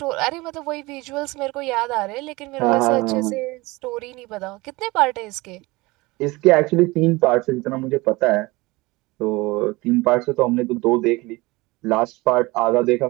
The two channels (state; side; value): quieter; left; 22.4 dB